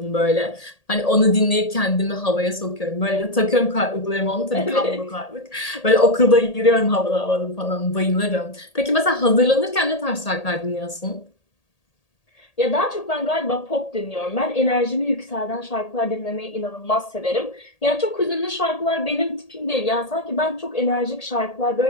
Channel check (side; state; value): right; late; 1.8 ms